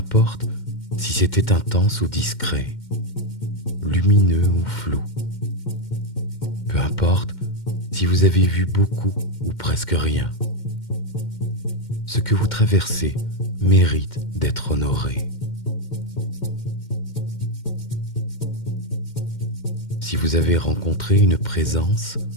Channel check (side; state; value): right; late; 2.1 ms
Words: si c'était intense ou discret, lumineux ou flou, peu importe si vous avez vu beaucoup ou presque rien, ce que vous traversez mérite d'être honoré. Si vous avez rencontré une présence,